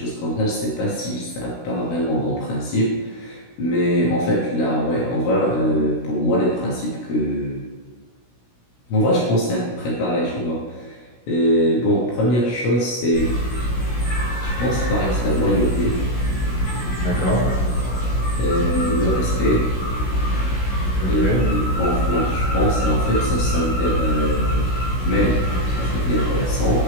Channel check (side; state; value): right; late; 16 ms